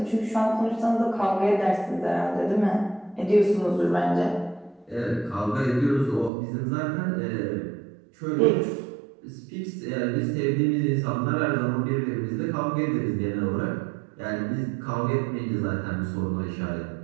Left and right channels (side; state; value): left; drops out; at 6.3 s